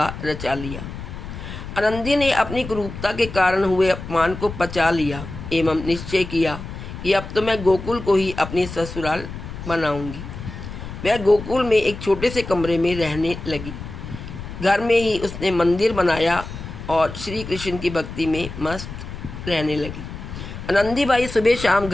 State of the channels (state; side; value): noise; left; rumble, 10 dB below the sound